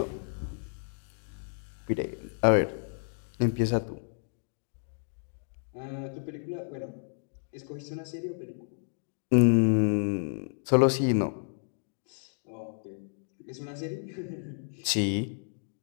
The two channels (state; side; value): silent; right; digital silence